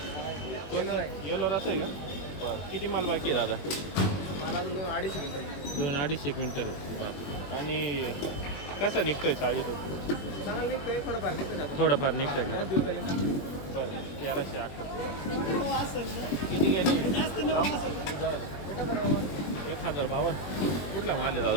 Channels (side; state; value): right; late; 21 ms